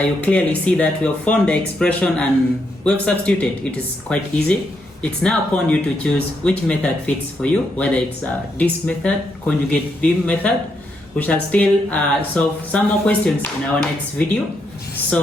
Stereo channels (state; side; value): normal; both; correlation 0.79